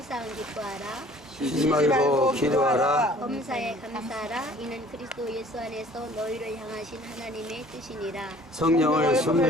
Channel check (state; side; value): normal; both; correlation 0.52